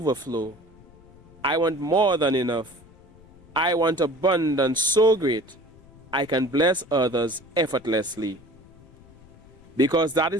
I want more than enough. I want abundance so great I can bless others effortlessly. Because that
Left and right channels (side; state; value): left; noise; rumble, 24 dB below the sound